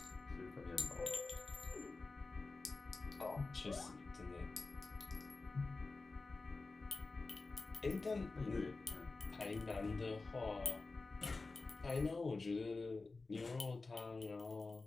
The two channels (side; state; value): right; quieter; 3.7 dB